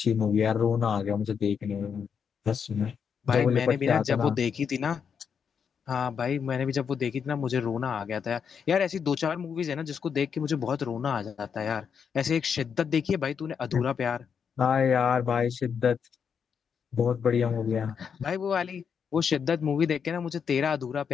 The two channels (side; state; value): right; quieter; 6.9 dB